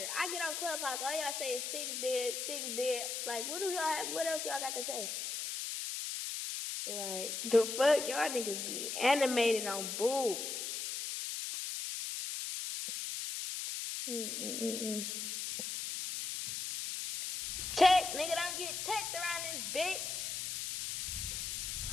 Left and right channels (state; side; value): noise; left; hiss, 3 dB below the sound